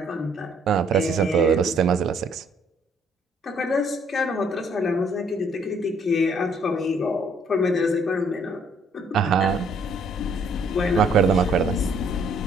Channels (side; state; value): both; normal; correlation 0.64